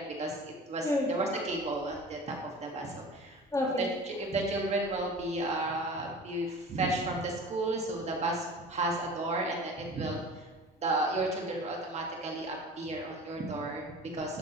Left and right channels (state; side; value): normal; both; correlation 0.39